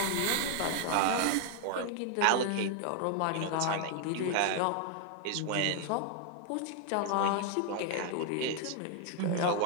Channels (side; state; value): both; different; correlation 0.00